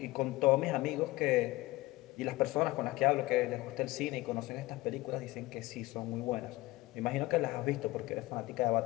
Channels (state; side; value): quieter; right; 19.6 dB